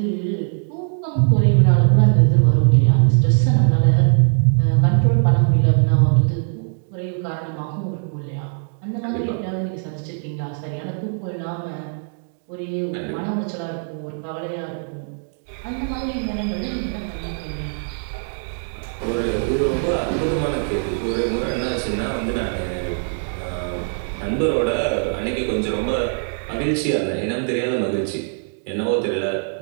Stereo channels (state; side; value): silent; left; digital silence